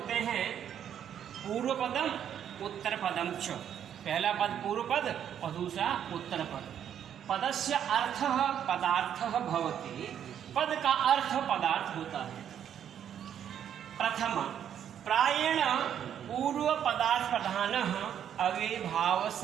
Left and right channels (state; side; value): quieter; left; 9.3 dB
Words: हैं। पूर्व पदम उत्तर पदम च, पहला पद पूर्व पद और दूसरा उत्तर पद। पदस्य अर्थः पदार्थः भवति, पद का अर्थ पदार्थ होता है। प्रथम प्रायेण पूर्व पदार्थ प्रधानः अव्ययभाव